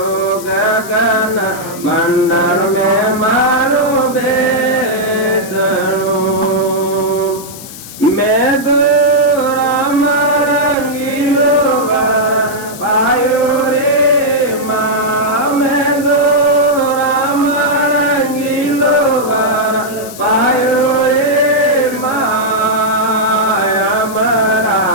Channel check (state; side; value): noise; left; hiss, 15 dB below the sound